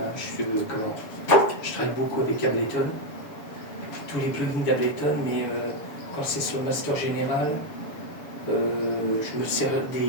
je travaille beaucoup avec Ableton, tous les plugins d'Ableton, mais quand c'est sur le master général, je me sers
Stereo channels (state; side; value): late; right; 7.0 ms